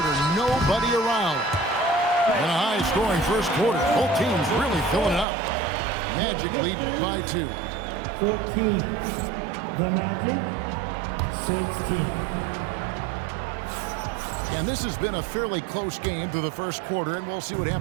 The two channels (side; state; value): left; drops out; at 5.2 s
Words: Nobody around. And a high-scoring first quarter. Both teams really filling it up. Magic lead by 2. 14. The Magic, 16. And this has been a fairly close game through the first quarter, and we'll see what